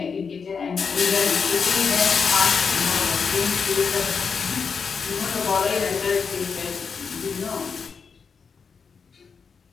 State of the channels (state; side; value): quieter; right; 5.7 dB